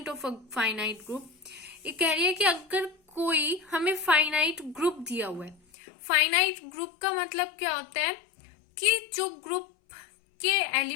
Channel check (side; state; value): right; drops out; at 5.6 s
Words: of a finite group. ये कह रही है कि अगर कोई हमें फाइनाइट ग्रुप दिया हुआ है, फाइनाइट ग्रुप का मतलब क्या होता है कि जो ग्रुप के